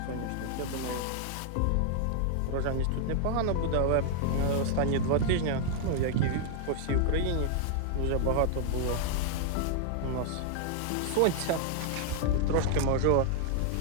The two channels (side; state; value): both; different; correlation 0.00